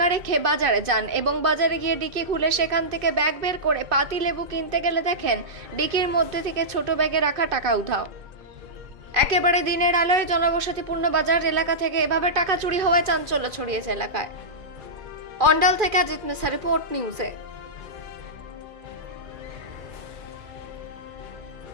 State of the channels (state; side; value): late; left; 2.5 ms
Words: রেখে বাজারে যান এবং বাজারে গিয়ে ডিকি খুলে সেখান থেকে ব্যাগ বের করে পাতি লেবু কিনতে গেলে দেখেন ডিকির মধ্যে থেকে ছোট ব্যাগে রাখা টাকা উধাও। একেবারে দিনের আলোয় জনবসতিপূর্ণ বাজার এলাকা থেকে এভাবে টাকা চুরি হওয়ায় চাঞ্চল্য ছড়িয়েছে এলাকায়। অন্ডাল থেকে অজিত মিশ্রা, রিপোর্ট নিউজে।